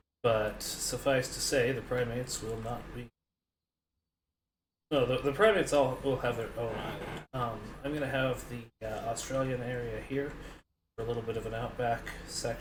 But suffice to say, the primates will not be. No, the primates all will have their own island. I'm going to have the Australian area here for a little bit of an outback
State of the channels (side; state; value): both; identical; correlation 1.00